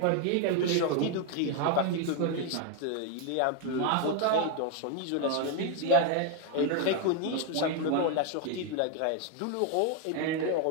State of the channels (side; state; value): both; different; correlation 0.01